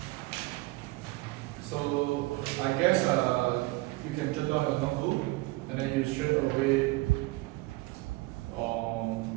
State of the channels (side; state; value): left; quieter; 21.6 dB